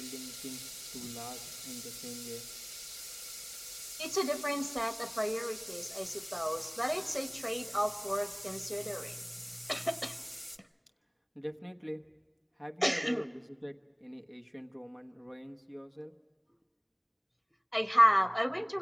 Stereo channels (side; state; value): both; identical; correlation 1.00